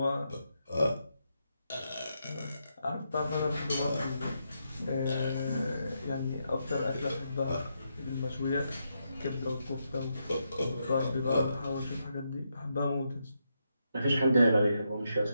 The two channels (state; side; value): inverted; both; correlation -0.82